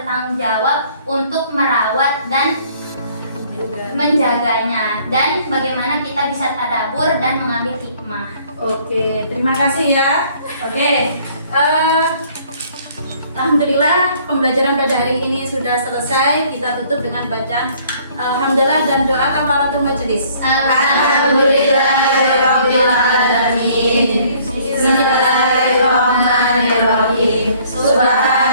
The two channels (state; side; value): inverted; both; correlation -0.59